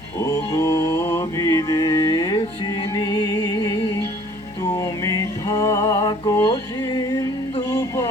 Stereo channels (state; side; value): normal; both; correlation 0.55